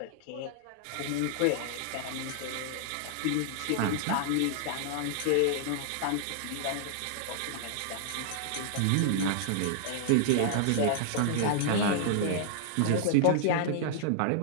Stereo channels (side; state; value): both; different; correlation -0.01